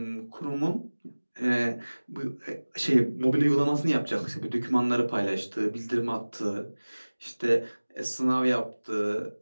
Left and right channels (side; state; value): both; inverted; correlation -1.00